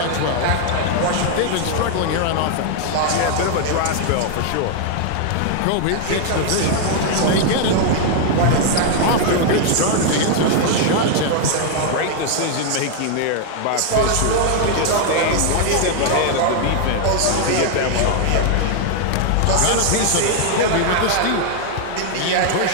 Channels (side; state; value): both; different; correlation 0.00